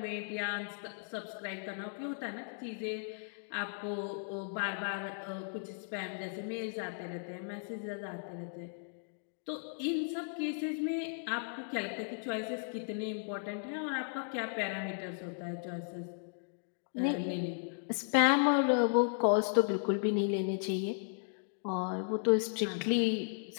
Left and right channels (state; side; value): silent; right; digital silence